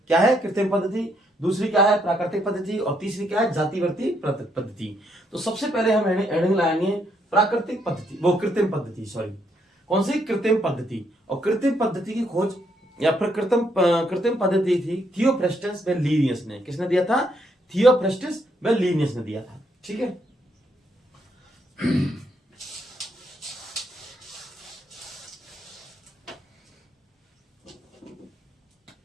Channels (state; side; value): normal; both; correlation 0.74